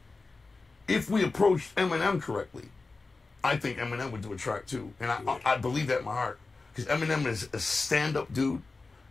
if we approached Eminem correctly, I think Eminem would do a track too. And I believe that in my heart. Because Eminem is a stand-up dude,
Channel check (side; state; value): right; quieter; 3.8 dB